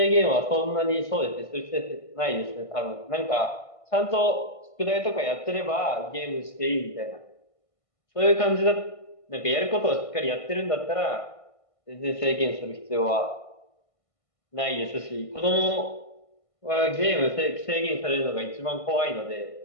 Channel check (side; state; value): right; late; 1.5 ms